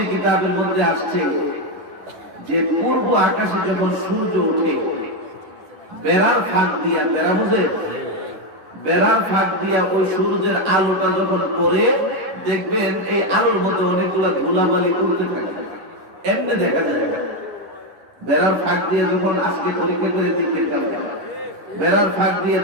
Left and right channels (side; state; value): left; late; 10 ms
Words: কিতাবের মধ্যে আসছে যে পূর্ব আকাশে যখন সূর্য ওঠে, বেড়ার ফাঁক দিয়া, বেড়া বুঝে, বেড়ার ফাঁক দিয়া ওই সূর্যের আলোটা যখন পড়ে, দেখবেন এই আলোর মধ্যে অনেকগুলা ধুলাবালি উড়তে থাকে, এমনি দেখা যায়। বেড়ার ফাঁক দিয়ে যখন আজকে পরীক্ষা করে দেখে বেড়ার ফাঁক দিয়ে